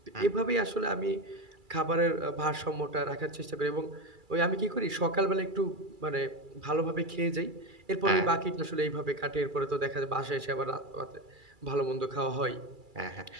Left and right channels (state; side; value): late; left; 2.3 ms